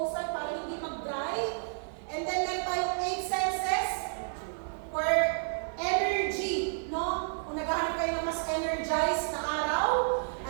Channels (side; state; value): left; silent; 56 dB below the other